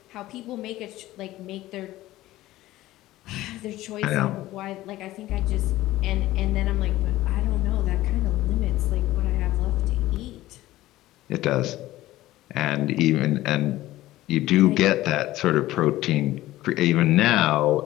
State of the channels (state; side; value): quieter; right; 16.1 dB